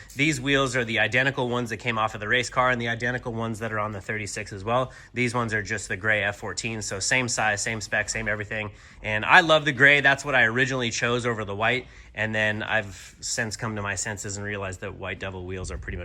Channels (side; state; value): both; identical; correlation 1.00